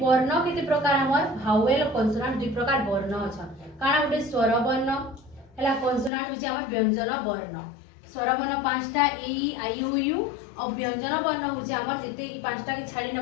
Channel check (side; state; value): right; drops out; at 6.1 s